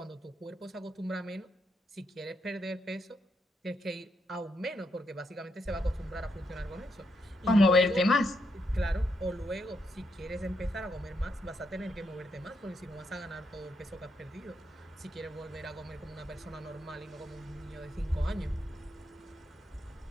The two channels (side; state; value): both; normal; correlation 0.80